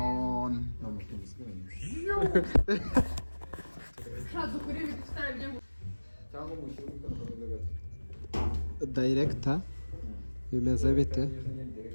Dukore ibintu tutarabyo ngo cyangwa mushyire ukakomeza gato Director bimeze bite?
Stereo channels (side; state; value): both; inverted; correlation -1.00